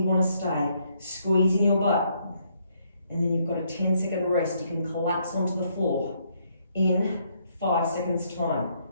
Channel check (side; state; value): both; inverted; correlation -0.72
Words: to stay. Squeezing your butt. And then you've got a 10-second rest. You can collapse onto the floor in 5 seconds time.